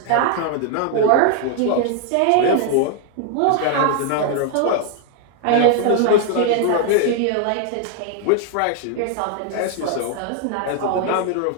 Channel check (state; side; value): different; both; correlation 0.00